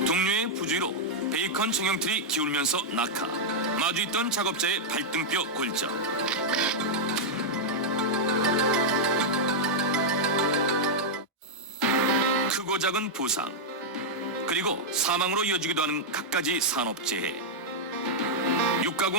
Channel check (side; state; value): both; normal; correlation -0.04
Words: 동료의 부주의로 베이컨 정형틀이 기울면서 낙하. 마주 있던 작업자의 발등뼈 골절. 크고 작은 부상, 그리고 사망으로 이어지기도 하는 갖가지 산업재해.